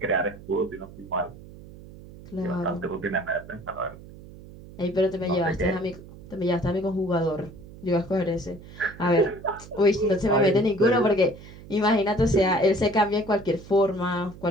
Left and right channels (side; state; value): right; noise; hum, 18 dB below the sound